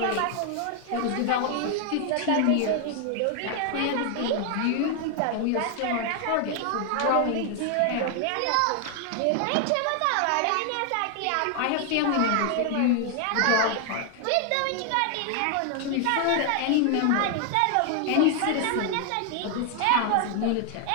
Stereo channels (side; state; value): both; different; correlation 0.00